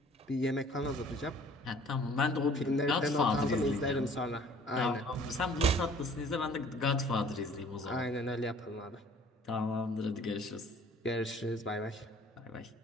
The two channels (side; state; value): both; normal; correlation 0.53